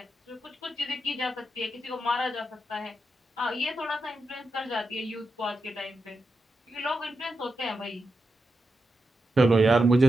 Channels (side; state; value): both; normal; correlation 0.87